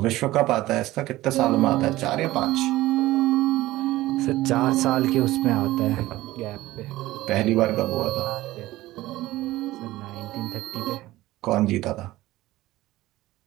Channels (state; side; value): quieter; left; 17.1 dB